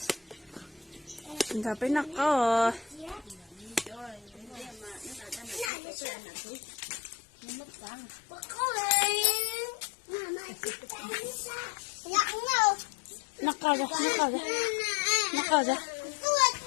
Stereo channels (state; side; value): drops out; right; at 5.7 s